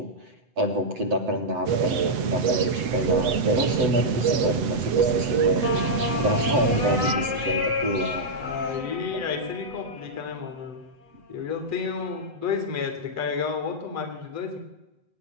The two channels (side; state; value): left; late; 7.9 ms